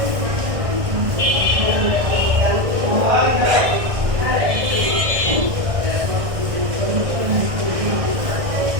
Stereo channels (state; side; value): late; left; 1.6 ms